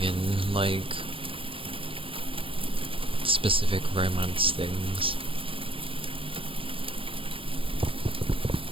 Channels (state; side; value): late; left; 0.26 ms